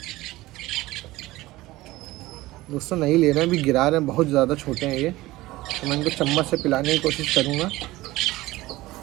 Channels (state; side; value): quieter; left; 18.4 dB